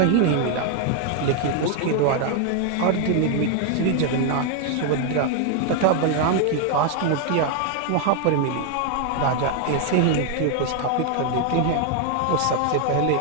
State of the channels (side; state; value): both; different; correlation 0.01